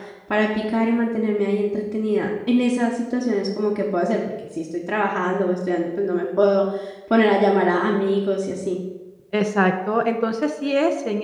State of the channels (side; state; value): both; identical; correlation 1.00